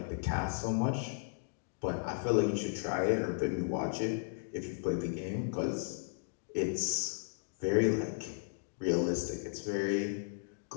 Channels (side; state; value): right; silent; digital silence